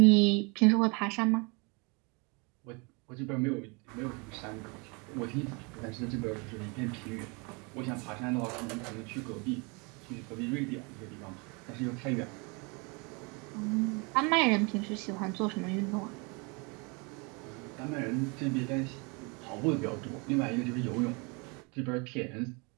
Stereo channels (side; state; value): left; quieter; 30.6 dB